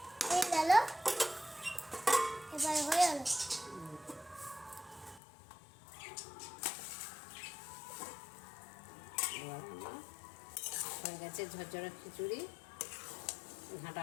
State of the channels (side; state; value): right; drops out; at 5.2 s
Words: এই গেল, এবারে হয়ে গেল। এবার আমার হয়ে গেছে ঝরঝরা খিচুড়ি,